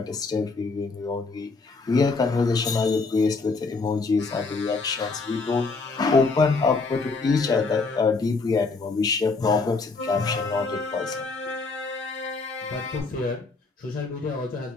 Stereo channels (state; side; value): quieter; right; 4.0 dB